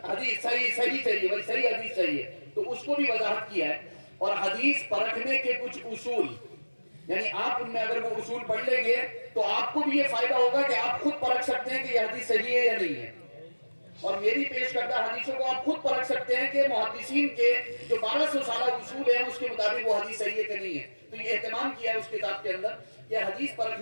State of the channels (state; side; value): inverted; both; correlation -1.00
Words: حدیث صحیح چاہیے، بھائی صحیح حدیث چاہیے. تو اس کو بھی وضاحت کیا ہے. اور حدیث پرکھنے کے کچھ اصول، یعنی آپ ان میں اگر وہ اصول پڑھ لیں گے تو آپ کو بھی یہ فائدہ ہوگا کہ آپ خود پرکھ سکتے ہیں کہ یہ حدیث صحیح ہے یا نہیں ہے. اور میری پیش کردہ حدیثوں کو آپ خود پرکھ سکتے ہیں کہ محدثین کے جو 1200 سالہ اصول ہیں اس کے مطابق وہ حدیث صحیح ہے کہ نہیں ہے. تو یہ اہتمام کیا ہے اس کتاب کے اندر کہ حدیث